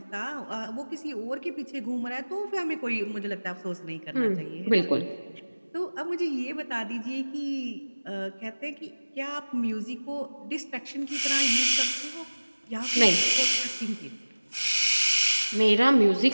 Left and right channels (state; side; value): inverted; both; correlation -1.00